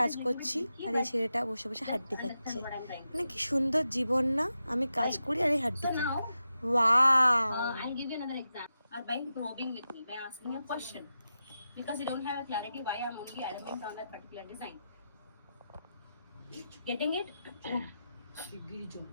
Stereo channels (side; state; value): both; inverted; correlation -0.90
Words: করছি আর এই ছেলেটা বসে বসে হাড্ডি খাচ্ছে। মানে কি সুন্দর জীবন না, আমি কাজ করি আর এই হাড্ডি খাই। Wow. I'll give you another example. Or by probing with me, by asking a question. Because you don't have a clarity why I'm only arrogant on that particular design. Getting it?